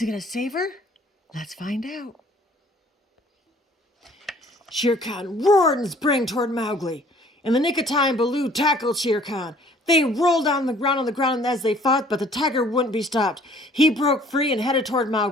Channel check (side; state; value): both; normal; correlation 0.56